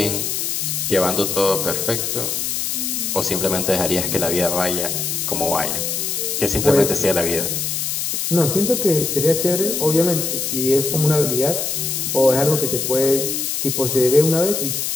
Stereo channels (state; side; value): noise; left; hiss, 1 dB below the sound